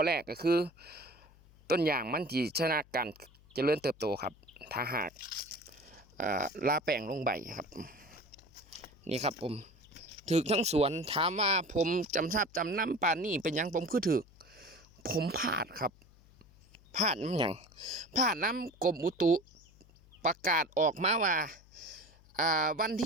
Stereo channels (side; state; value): left; noise; hum, 26 dB below the sound